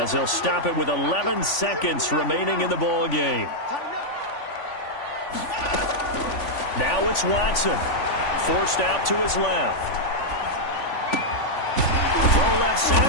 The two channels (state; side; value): late; right; 3.5 ms